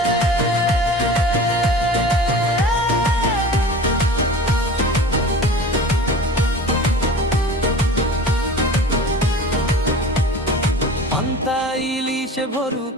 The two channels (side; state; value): both; normal; correlation 0.38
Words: পান্তা ইলিশে ভরু